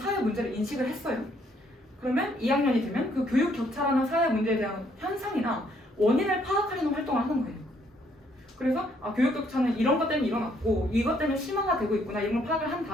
문제를 인식을 했어요. 그러면 2학년이 되면 그 교육 격차라는 사회 문제에 대한 현상이나 원인을 파악하려는 활동을 하는 거예요. 그래서 교육 격차는 이런 것 때문에 일어났고 이것 때문에 심화가 되고 있구나 이런 걸 파악을 한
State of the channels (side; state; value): both; normal; correlation 0.68